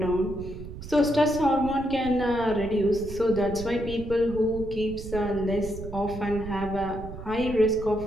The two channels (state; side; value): noise; right; rumble, 11 dB below the sound